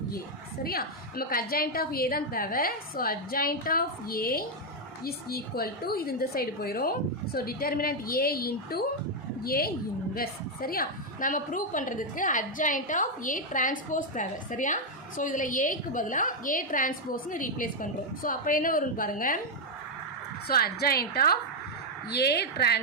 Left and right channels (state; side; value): normal; both; correlation 0.01